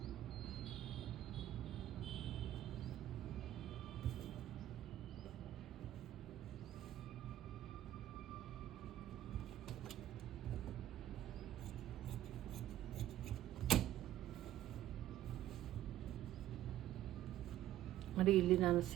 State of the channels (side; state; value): left; quieter; 12.9 dB